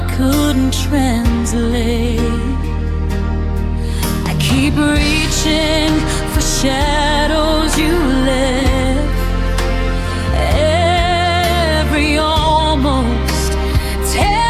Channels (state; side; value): identical; both; correlation 1.00